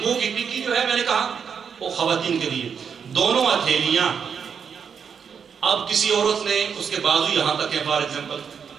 کی ٹکی جو ہے، میں نے کہا وہ خواتین کے لیے، دونوں ہتھیلیاں۔ اب کسی عورت نے اس کے بازو یہاں تک ہے، فار ایگزامپل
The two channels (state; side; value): quieter; left; 6.8 dB